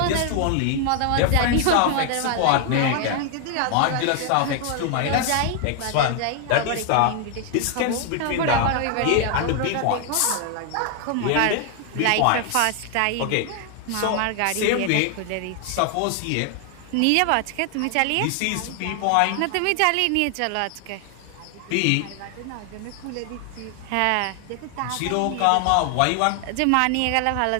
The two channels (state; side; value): different; both; correlation 0.00